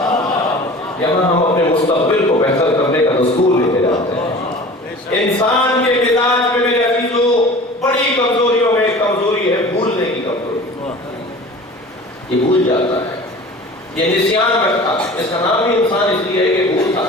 یہاں ہم اپنے مستقبل کو بہتر کرنے کا دستور لے کے جاتے ہیں۔ انسان کے مزاج میں میرے عزیزوں بڑی کمزوریوں میں ایک کمزوری ہے بھولنے کی کمزوری، یہ بھول جاتا ہے، یہ نسیان رکھتا ہے۔ اس کا نام ہی انسان اس لیے ہے کہ بھولتا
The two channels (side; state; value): both; normal; correlation 0.41